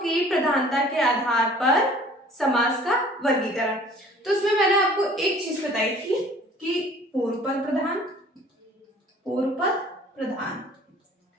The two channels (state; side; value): normal; both; correlation 0.51